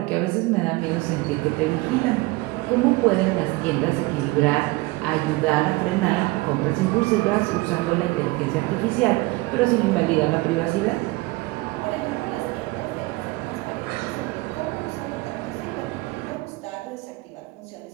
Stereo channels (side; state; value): left; quieter; 22.1 dB